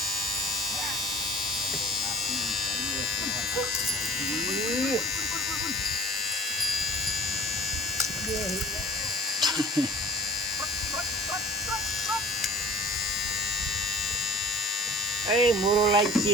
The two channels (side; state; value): both; normal; correlation 0.46